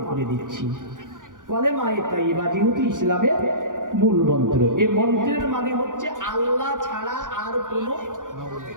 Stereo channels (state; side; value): late; left; 0.88 ms